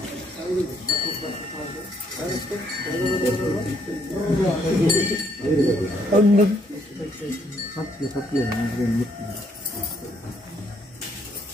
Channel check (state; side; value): normal; both; correlation 0.70